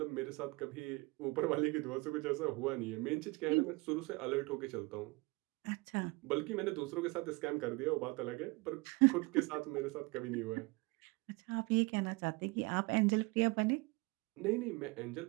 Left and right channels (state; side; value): quieter; left; 25.3 dB